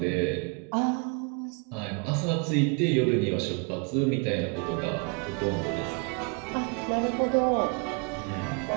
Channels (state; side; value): quieter; left; 33.2 dB